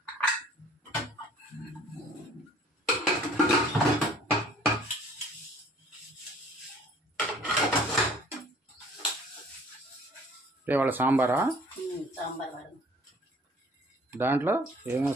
ఇవాళ సాంబారా? దాంట్లో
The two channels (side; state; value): both; normal; correlation 0.53